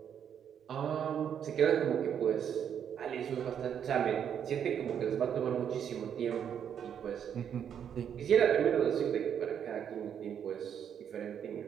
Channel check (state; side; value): quieter; left; 8.6 dB